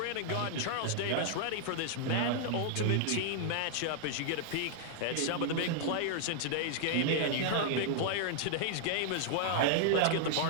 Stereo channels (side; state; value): both; different; correlation -0.01